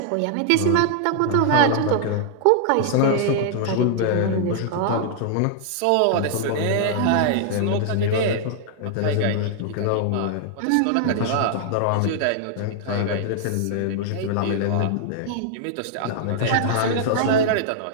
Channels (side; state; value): both; different; correlation -0.01